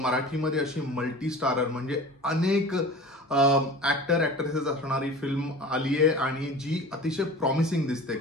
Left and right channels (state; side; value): normal; both; correlation 0.38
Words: अशी मल्टी स्टारर म्हणजे अनेक ऍक्टर ऍक्ट्रेसेस असणारी फिल्म आली आहे आणि जी अतिशय प्रॉमिसिंग दिसते.